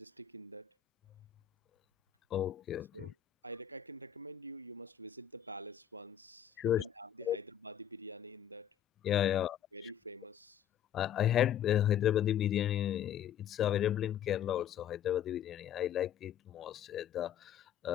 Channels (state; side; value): quieter; right; 10.3 dB